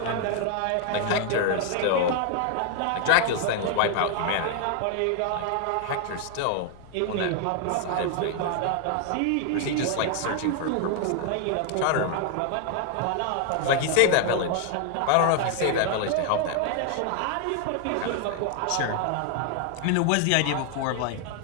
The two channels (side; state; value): both; different; correlation 0.00